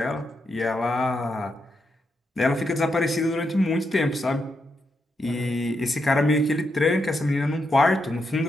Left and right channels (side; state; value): both; normal; correlation 0.83